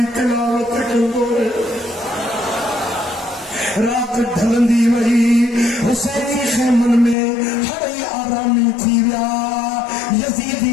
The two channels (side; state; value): right; drops out; at 7.2 s